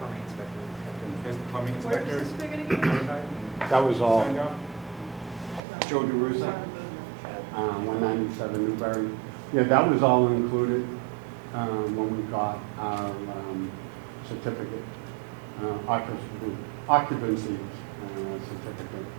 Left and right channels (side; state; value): left; drops out; at 5.6 s